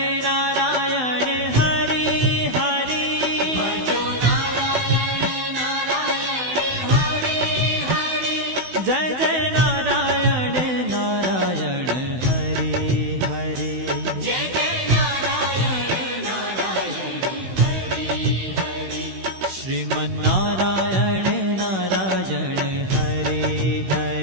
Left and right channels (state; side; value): late; left; 16 ms